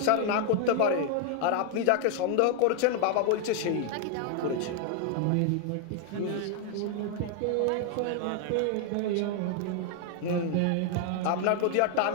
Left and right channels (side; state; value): both; different; correlation 0.00